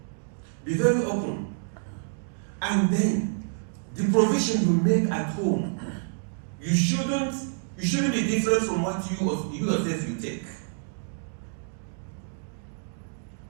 Be very open. And then the provision you make at home, you shouldn't be different from what you yourself you take.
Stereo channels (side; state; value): left; silent; digital silence